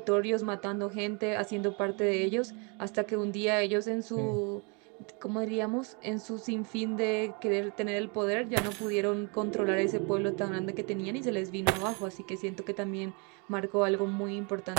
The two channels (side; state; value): left; quieter; 33.0 dB